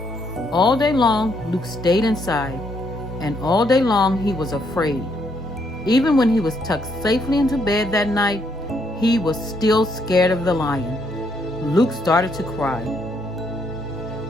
All day long, Luke stayed inside, and all day long he was afraid. Even when he was tucked safely into bed that night, he was still scared of the lion. Luke started to cry.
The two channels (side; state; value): both; normal; correlation 0.73